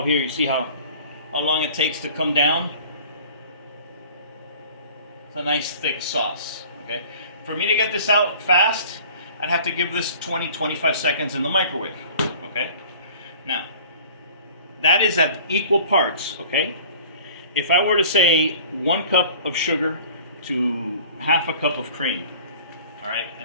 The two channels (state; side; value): inverted; both; correlation -0.46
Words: here. You see how long it takes to come down? It's a nice thick sauce. Okay? For me to get this out fast, I'd have to give this 20-25 seconds in the microwave. Okay? Now, that is at equal parts. Okay? If I were to say 1 cup of sugar to half a cup of cream, all right,